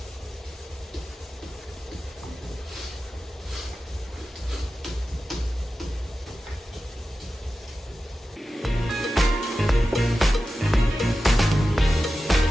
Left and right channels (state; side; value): normal; both; correlation 0.93